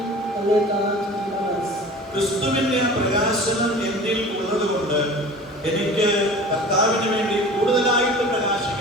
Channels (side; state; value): both; normal; correlation 0.40